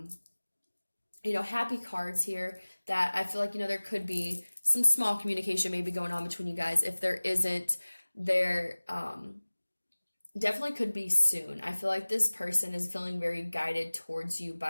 happy cards here that I feel like, there could be some small communication maybe going on between you guys. If there isn't, there definitely could be soon. I feel like this person is feeling very guided towards you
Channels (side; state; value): both; inverted; correlation -1.00